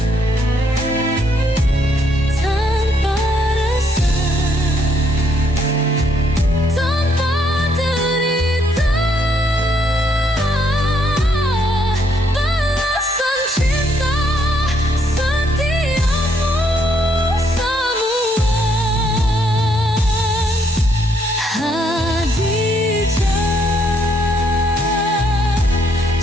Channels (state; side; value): normal; both; correlation 0.71